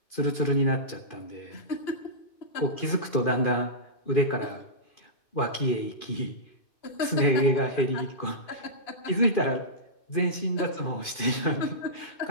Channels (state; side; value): late; right; 2.4 ms